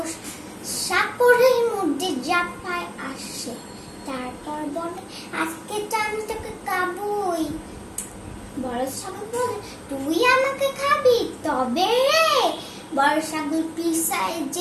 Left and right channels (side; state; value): both; identical; correlation 1.00